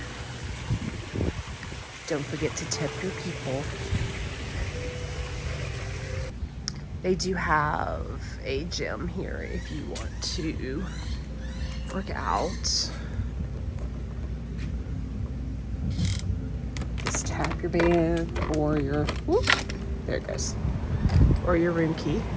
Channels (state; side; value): identical; both; correlation 1.00